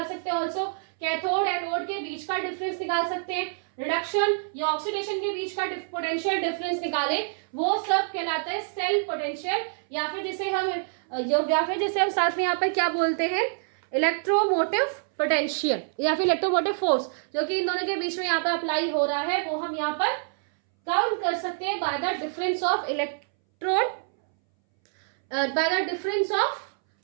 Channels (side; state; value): left; silent; 61 dB below the other